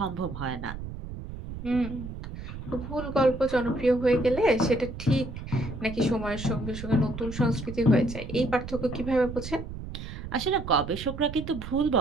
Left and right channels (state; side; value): noise; right; rumble, 9 dB below the sound